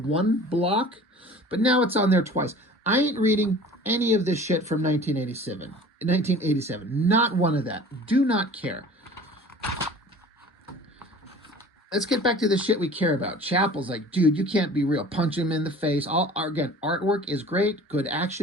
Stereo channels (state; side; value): normal; both; correlation 0.44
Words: block. But now it's on there twice. I ain't reading any of this shit from 1987. 1987. Not one of that. Do not care. Let's get back to the shit we care about. Chapel's like, dude, you can't be real. Punch him in the face. Again, artwork is great. Good